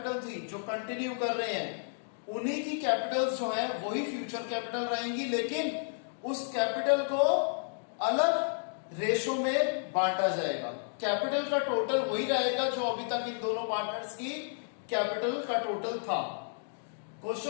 थी जो कंटिन्यू कर रहे हैं, उन्हीं की कैपिटल्स जो है वही फ्यूचर कैपिटल रहेंगी, लेकिन उस कैपिटल को अलग रेशो में बांटा जाएगा। कैपिटल का टोटल वही रहेगा जो अभी तक इन दोनों पार्टनर्स की कैपिटल का टोटल था। क्वेश्चन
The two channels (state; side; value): silent; right; digital silence